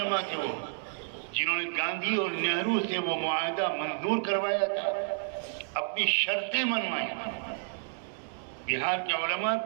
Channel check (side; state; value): left; silent; digital silence